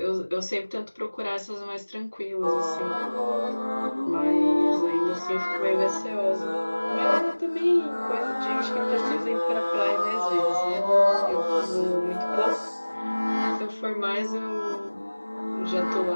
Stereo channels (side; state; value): both; inverted; correlation -1.00